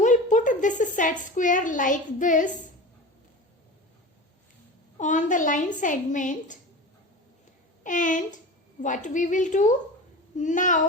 put this set square like this on the line segment, and what we will do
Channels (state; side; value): normal; both; correlation 0.32